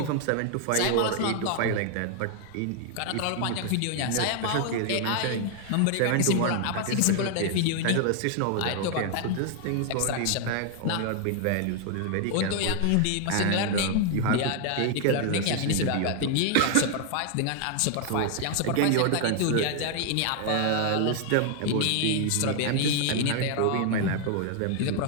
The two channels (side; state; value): both; different; correlation 0.00